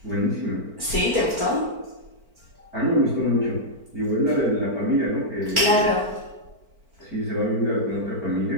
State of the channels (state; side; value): late; left; 4.5 ms